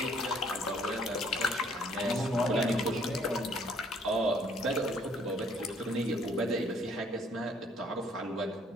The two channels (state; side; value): normal; both; correlation 0.62